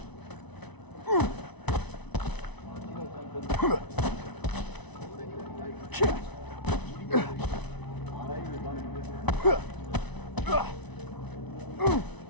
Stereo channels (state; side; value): late; right; 1.0 ms